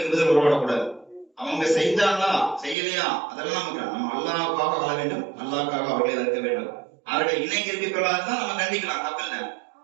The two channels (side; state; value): left; drops out; at 2.8 s